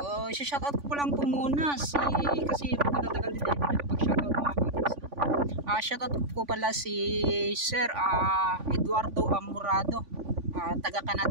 shoutout ko lang po muna kasi magtatagal din tayo nakapag-shoutout mga ka-outage, no? Shoutout ko pala si Sir Eduardo Amurado. Taga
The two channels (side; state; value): left; late; 3.5 ms